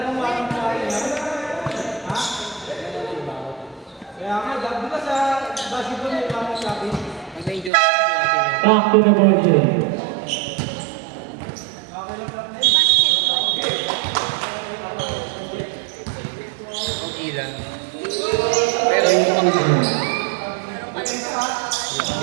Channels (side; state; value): left; drops out; at 7.7 s